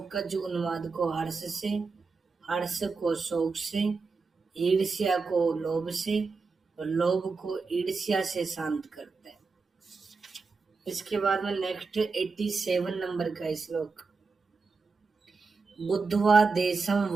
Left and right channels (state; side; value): quieter; left; 4.4 dB